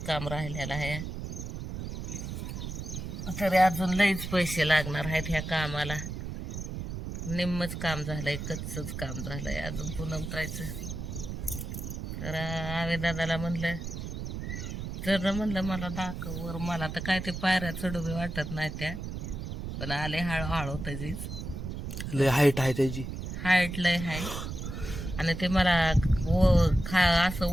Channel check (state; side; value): noise; right; rumble, 6 dB below the sound